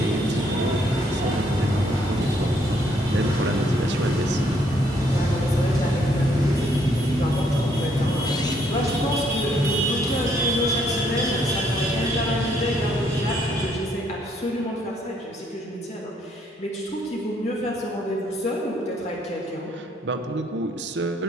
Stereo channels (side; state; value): both; normal; correlation 0.69